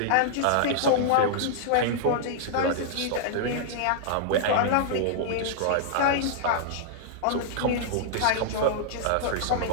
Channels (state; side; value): different; both; correlation -0.01